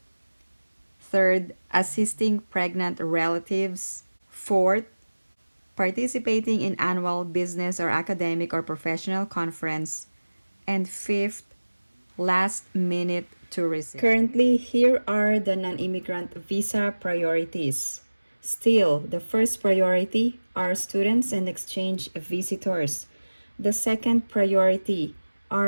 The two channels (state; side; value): inverted; both; correlation -1.00